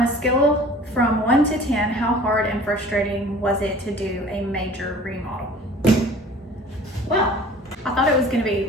a scale from 1 to 10, how hard and frustrating was it to do a major remodel? Well, I thought it was gonna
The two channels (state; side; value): normal; both; correlation 0.47